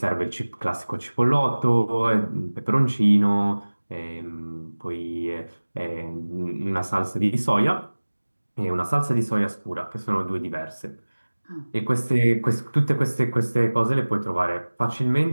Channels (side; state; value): both; inverted; correlation -1.00